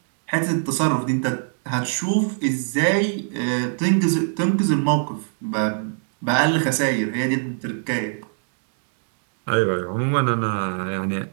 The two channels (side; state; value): left; silent; digital silence